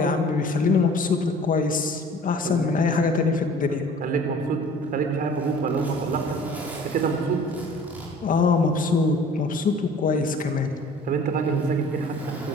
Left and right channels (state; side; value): normal; both; correlation 0.48